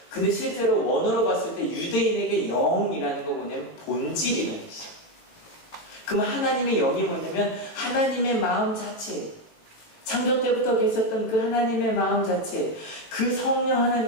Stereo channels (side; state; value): right; late; 18 ms